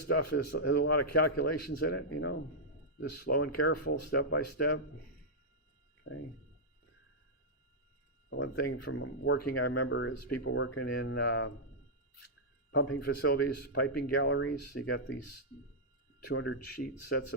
stuff has a lot of calculations in it, you know, just slow and careful, step by step. Okay. One thing from working I remember is people working in pumping facilities, piping galleries. You got these 200 sheet sets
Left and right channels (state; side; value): normal; both; correlation -0.08